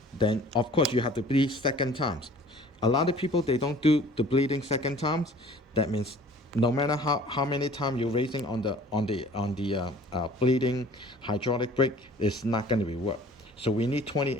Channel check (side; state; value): both; normal; correlation 0.50